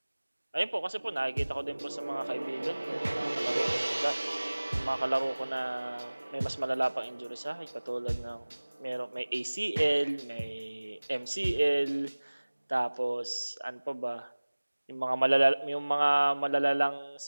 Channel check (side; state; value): both; inverted; correlation -1.00